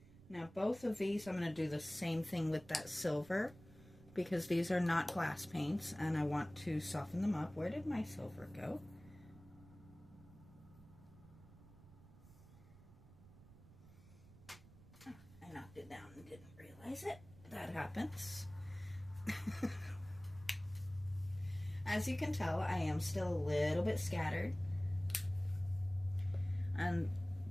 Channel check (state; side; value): noise; right; rumble, 21 dB below the sound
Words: Now, both of these, I'm going to do the same thing with that silver, because these are not glass paints, and I want to soften them up. Where did my silver go? Oh, I knocked it down and didn't realize it. That happens. As you can tell, I am still a little bit scattered, and